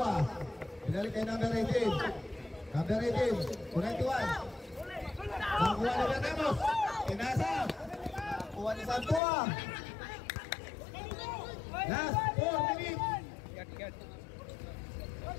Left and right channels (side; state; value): right; drops out; at 9.2 s